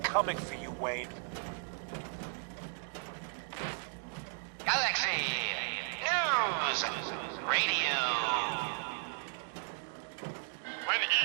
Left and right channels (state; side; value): silent; left; 54 dB below the other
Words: for you, Wayne. Galaxy News Radio. When